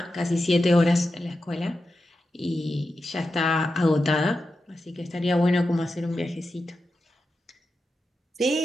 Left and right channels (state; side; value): normal; both; correlation 0.90